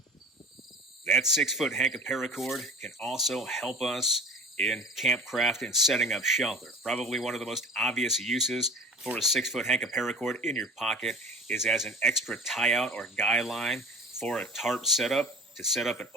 That 6-foot hank of paracord can also help us in campcraft and setting up shelter. Probably one of the most obvious uses for a 6-foot hank of paracord in your pocket is as an extra tie-out or guy line for a tarp setup, to set up an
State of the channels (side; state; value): both; normal; correlation 0.39